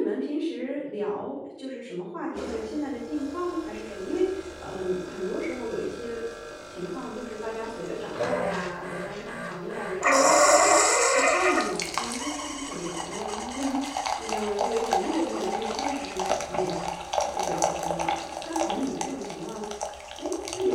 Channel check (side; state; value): both; identical; correlation 1.00